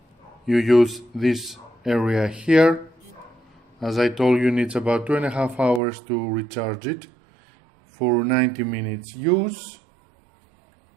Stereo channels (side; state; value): left; drops out; at 5.8 s